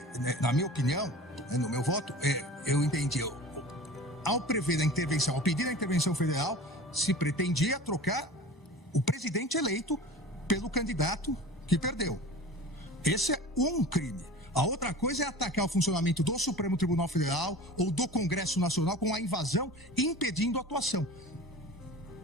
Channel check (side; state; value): both; normal; correlation 0.38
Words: na minha opinião, no meu voto, eu entendi, ao prever a intervenção, ao pedir a intervenção federal, se pretendia trocar o presidente eleito pelo candidato que perdeu. Esse é um crime. A outra coisa é atacar o funcionamento do Supremo Tribunal Federal ou do Congresso Nacional com a invasão, impedindo a atuação.